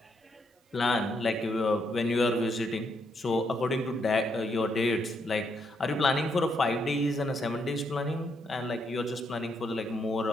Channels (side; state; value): both; normal; correlation 0.77